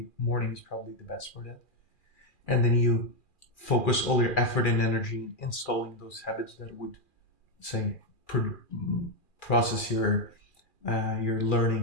morning is probably the best for that. And then you focus all your effort and energy in installing those habits that would say process your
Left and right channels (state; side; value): late; right; 2.4 ms